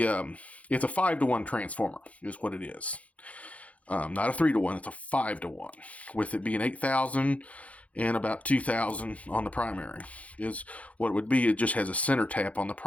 a 5-to-1 transformer is what it is. Not a 3-to-1. It's a 5-to-1. With it being 8,000 and about 2,000 on the primary is what it would be. It just has a center tap on the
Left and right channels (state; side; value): late; right; 0.066 ms